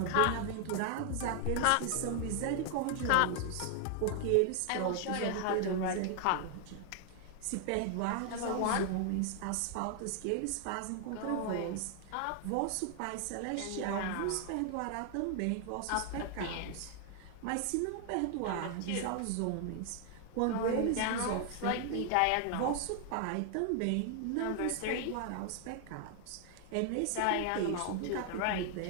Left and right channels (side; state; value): both; different; correlation 0.00